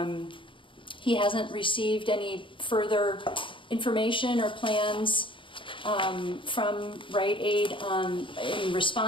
he hasn't received any further information or plans from Rite in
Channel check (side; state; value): right; late; 0.25 ms